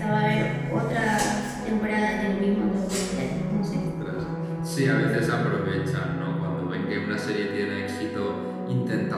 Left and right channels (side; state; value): both; identical; correlation 1.00